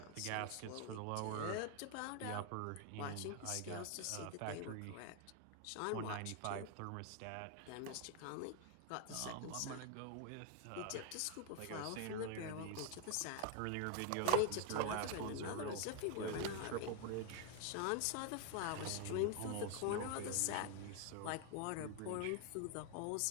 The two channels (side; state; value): both; different; correlation 0.01